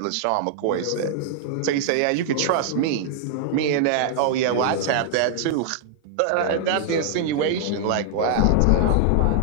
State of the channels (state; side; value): different; both; correlation -0.01